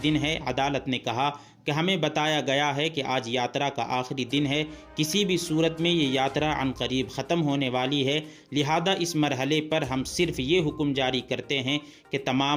دن ہے۔ عدالت نے کہا کہ ہمیں بتایا گیا ہے کہ آج یاترا کا آخری دن ہے، کسی بھی صورت میں یہ یاترا عنقریب ختم ہونے والی ہے، لہذا اس مرحلے پر ہم صرف یہ حکم جاری کرتے ہیں کہ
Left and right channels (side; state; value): both; identical; correlation 1.00